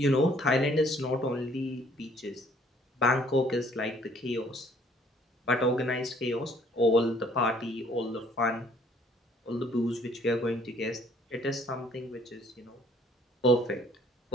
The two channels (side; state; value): both; normal; correlation 0.60